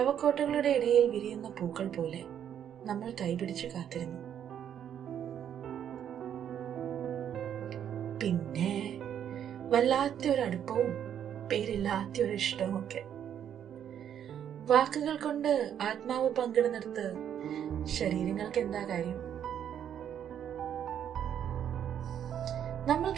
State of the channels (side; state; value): left; quieter; 9.4 dB